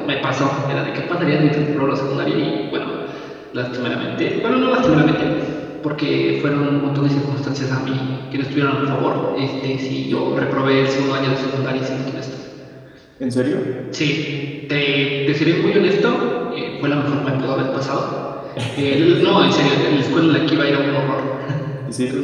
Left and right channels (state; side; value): identical; both; correlation 1.00